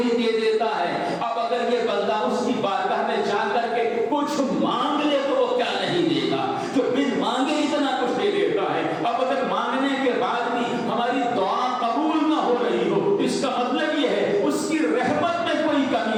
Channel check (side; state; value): both; identical; correlation 1.00